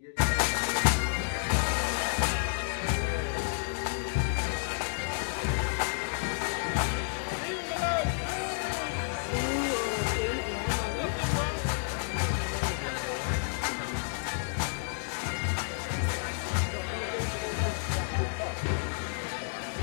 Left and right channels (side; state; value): right; silent; digital silence